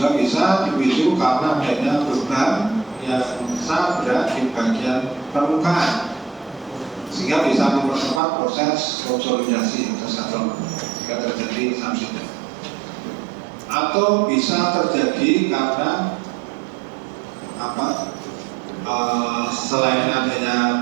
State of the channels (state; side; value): drops out; left; at 8.2 s